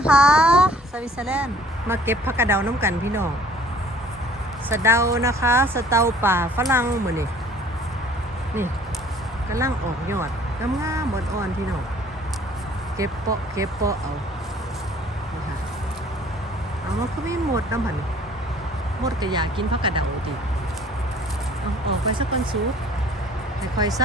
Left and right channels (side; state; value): both; normal; correlation 0.54